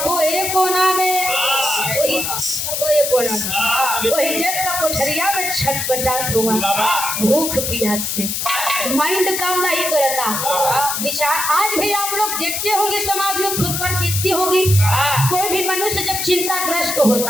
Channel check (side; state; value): left; noise; hiss, 2 dB below the sound